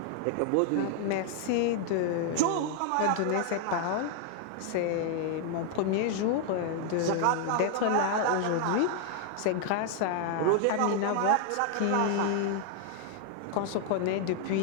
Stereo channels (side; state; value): both; different; correlation 0.00